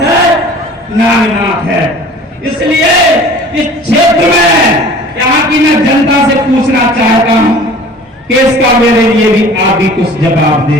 है? नागनाथ है। इसलिए इस क्षेत्र में यहाँ की मैं जनता से पूछना चाहता हूं कि इसका मेरे लिए भी आप भी कुछ जवाब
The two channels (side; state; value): both; normal; correlation 0.45